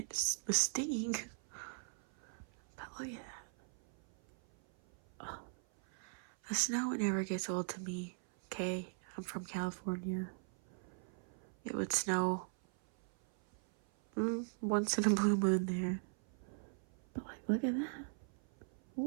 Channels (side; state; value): left; silent; 51 dB below the other